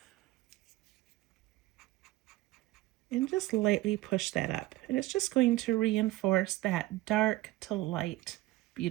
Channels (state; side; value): quieter; left; 17.7 dB